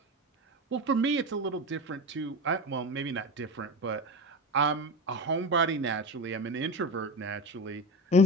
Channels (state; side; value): normal; both; correlation 0.24